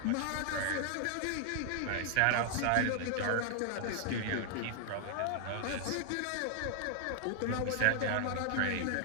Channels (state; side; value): different; both; correlation 0.00